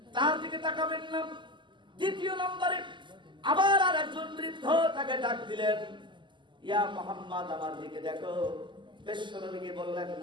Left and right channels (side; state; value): left; late; 0.23 ms